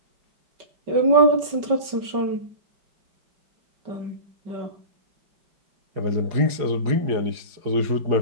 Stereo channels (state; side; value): late; left; 5.2 ms